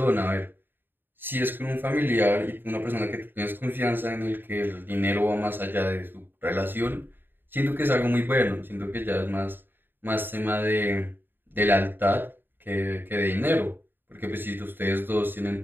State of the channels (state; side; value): late; left; 0.095 ms